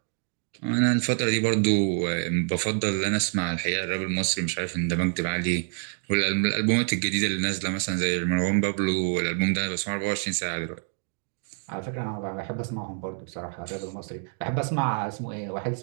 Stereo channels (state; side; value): silent; left; 60 dB below the other